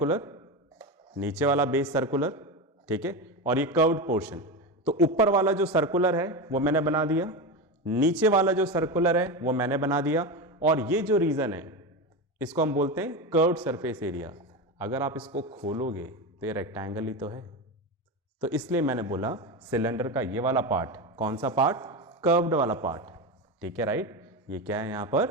नीचे वाला बेस सर्कुलर, ठीक है, और ये कर्व्ड पोर्शन। तो ऊपर वाला जो सर्कुलर है वो मैंने बना दिया, नीचे वाला जो सर्कुलर है वो मैंने बना दिया, और ये जो रीजन है इसको हम बोलते हैं कर्व्ड सरफेस एरिया। अगर आप इसको खोलोगे तो ये रेक्टेंगल ही तो है। तो इसलिए मैंने बोला सिलेंडर का ये वाला पार्ट, कौन सा पार्ट? कर्व्ड वाला पार्ट। ठीक है, राइट, ये क्या है यहां पर?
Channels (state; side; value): normal; both; correlation 0.19